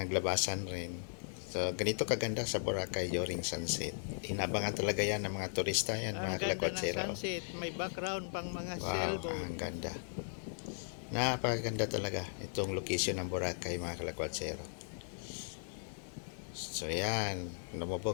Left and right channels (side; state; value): right; silent; digital silence